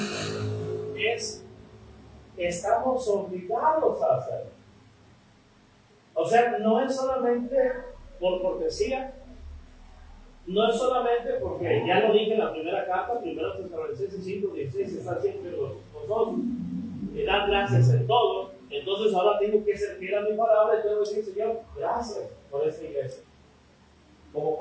es estamos obligados a hacerlo. O sea, no es solamente por cortesía, no es solamente porque ya lo dije en la primera carta, 1 Tesalonicenses 5:16, está siempre los dos, me dan gracias en todo, entonces ahora tengo que ser fiel a mi palabra y tengo que decir, Señor, gracias por esta iglesia. Como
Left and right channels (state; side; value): identical; both; correlation 1.00